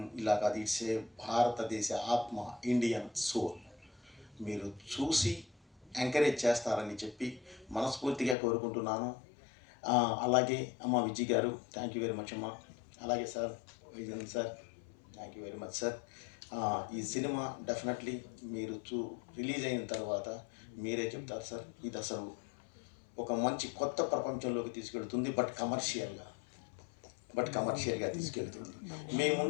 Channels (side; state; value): right; drops out; at 8.3 s